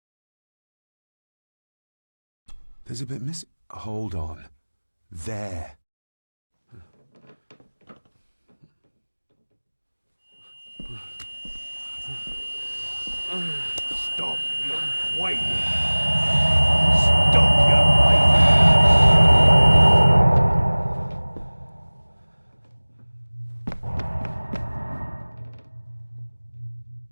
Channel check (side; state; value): both; inverted; correlation -1.00